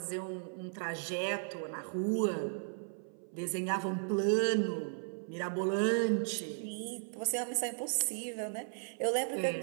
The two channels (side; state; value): left; silent; 54 dB below the other